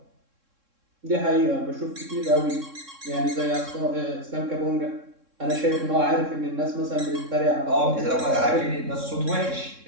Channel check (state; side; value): late; left; 3.7 ms